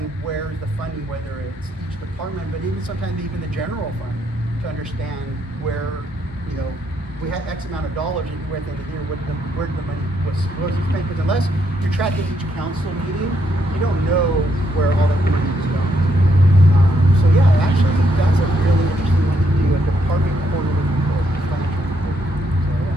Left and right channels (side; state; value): both; normal; correlation 0.75